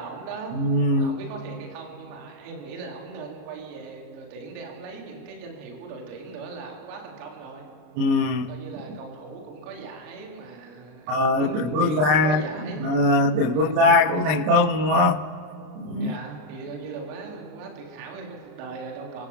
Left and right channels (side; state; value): left; late; 33 ms